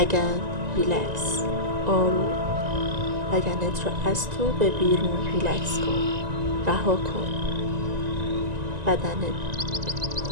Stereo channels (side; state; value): left; late; 1.9 ms